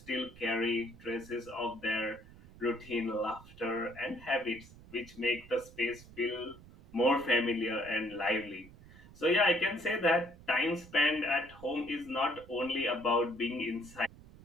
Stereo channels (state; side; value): noise; right; rumble, 20 dB below the sound